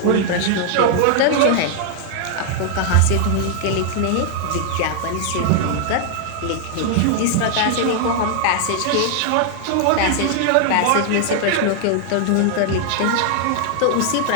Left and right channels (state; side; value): different; both; correlation 0.00